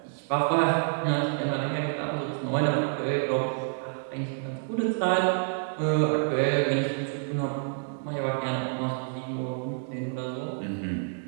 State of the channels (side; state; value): left; silent; 59 dB below the other